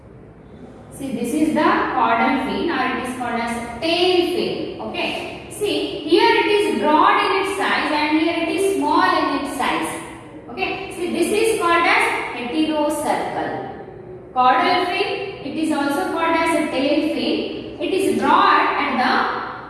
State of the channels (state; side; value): identical; both; correlation 1.00